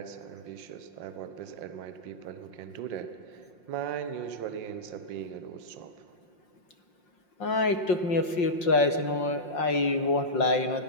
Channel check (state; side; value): late; right; 5.6 ms